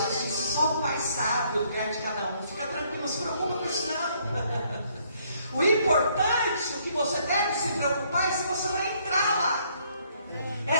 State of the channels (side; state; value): both; inverted; correlation -0.67